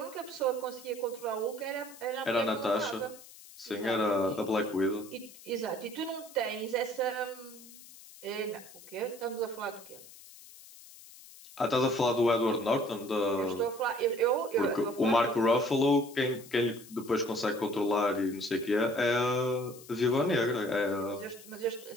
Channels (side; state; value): left; noise; hiss, 19 dB below the sound